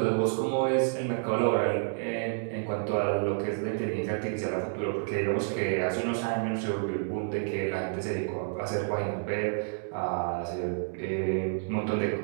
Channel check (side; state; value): left; silent; digital silence